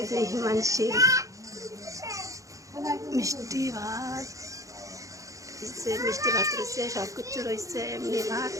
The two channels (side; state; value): left; late; 0.16 ms